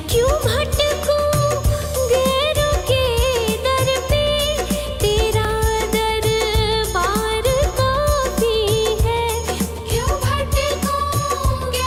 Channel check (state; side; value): identical; both; correlation 1.00